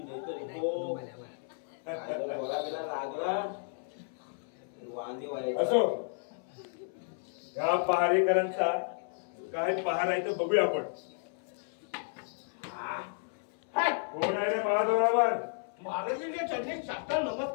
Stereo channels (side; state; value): right; silent; 56 dB below the other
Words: असो या पहारेकरांचा काय पहार आहे तर बघूया आपण. कोण आहे रे महादोरावर. महाराजांच्या चरणी साष्टांग